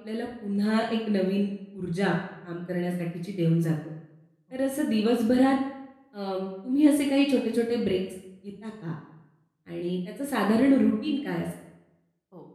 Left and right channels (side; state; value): both; identical; correlation 1.00